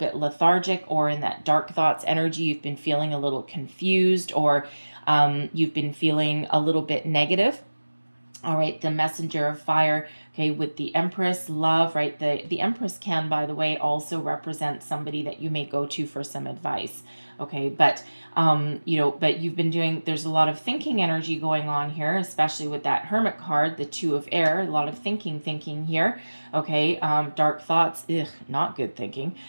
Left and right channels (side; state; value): both; inverted; correlation -1.00